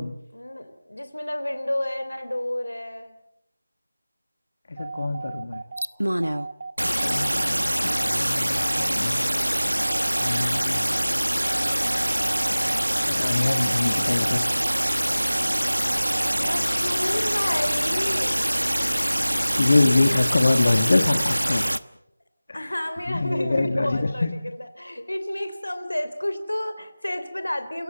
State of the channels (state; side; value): inverted; both; correlation -0.98